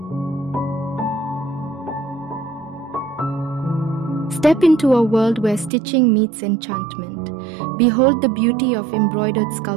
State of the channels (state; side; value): drops out; left; at 5.7 s